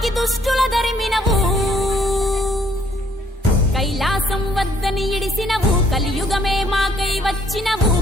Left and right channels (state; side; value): normal; both; correlation 0.65